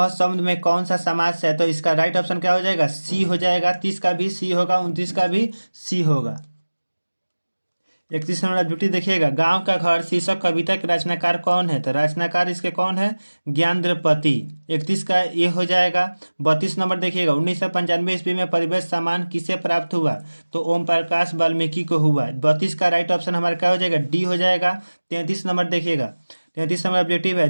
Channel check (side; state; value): both; inverted; correlation -1.00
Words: शब्द में कौन सा समास है? तो इसका राइट ऑप्शन क्या हो जाएगा? सी हो जाएगा। 30 का भी सी होगा, 29 का भी सी होगा। 31 नंबर ड्यूटी देखिएगा। गांव का घर शीर्षक कविता के रचनाकार कौन है? तो रचनाकार इसके कौन है? ज्ञानद्रपति। 31 का ये हो जाएगा। 32 नंबर देखिएगा। 1995 ईस्वी में परिवेश सम्मान किसे प्राप्त हुआ? तो ओम प्रकाश वाल्मीकि को हुआ। 32 का राइट ऑप्शन हमारा क्या हो जाएगा? डी हो जाएगा। 33 नंबर देखिएगा। 33 नंबर ऑब्जेक्टिव है।